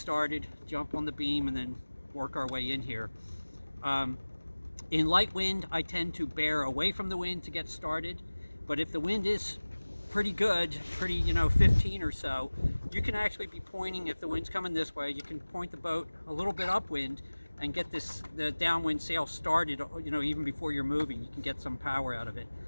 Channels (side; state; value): both; inverted; correlation -1.00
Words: jump on the beam, and then work our way in here. In light wind, I tend to bear away from the wind to get started. But if the wind is pretty good, 15 or so, you can actually be pointing, if the wind's coming this way, you can point the boat a little bit upwind and get the downwind sail started, even before you're moving. You can get some power out of it.